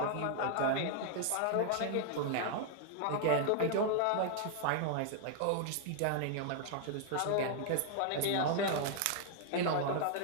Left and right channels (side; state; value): both; different; correlation 0.00